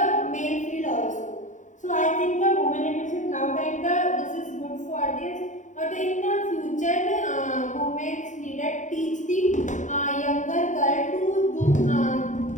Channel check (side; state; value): right; late; 0.36 ms